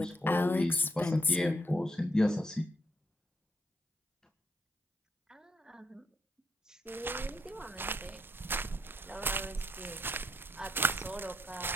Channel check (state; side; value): normal; both; correlation 0.75